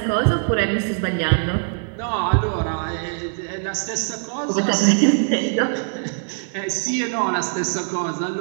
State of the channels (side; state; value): left; silent; 57 dB below the other